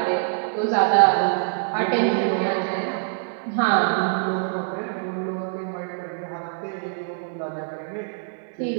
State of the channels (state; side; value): silent; left; digital silence